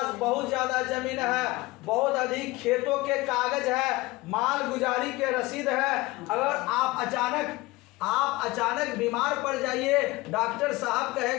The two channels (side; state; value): right; quieter; 21.0 dB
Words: बहुत ज्यादा जमीन है, बहुत अधिक खेतों के कागज है, माल गुजारी के रसीद है, अगर आप अचानक बीमार पड़ जाइए, डॉक्टर साहब